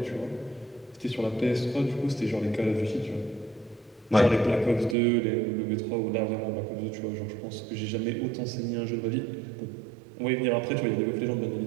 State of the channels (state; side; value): drops out; left; at 5.0 s